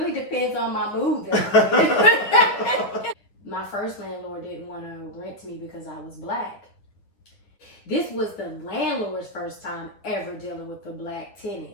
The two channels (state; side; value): late; right; 9.6 ms